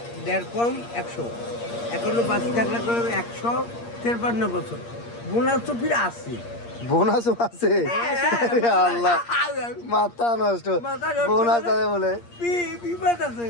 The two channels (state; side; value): late; right; 8.6 ms